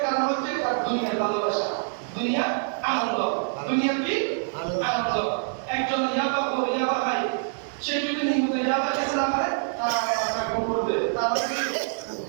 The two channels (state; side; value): silent; left; digital silence